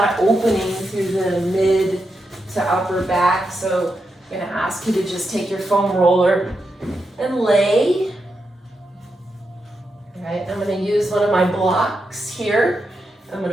of opening through the mid to upper back. So I'm going to ask you to just take your foam roller and lay. Right, I'm going to use one of my blocks here. I'm going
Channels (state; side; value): normal; both; correlation 0.86